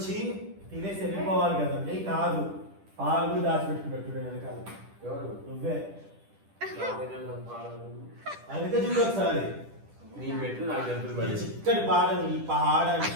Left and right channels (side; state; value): left; late; 10 ms